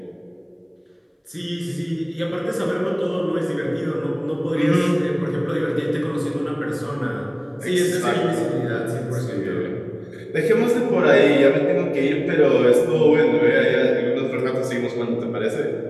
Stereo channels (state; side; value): identical; both; correlation 1.00